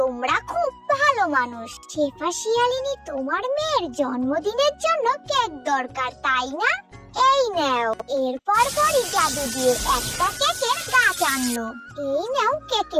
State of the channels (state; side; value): identical; both; correlation 1.00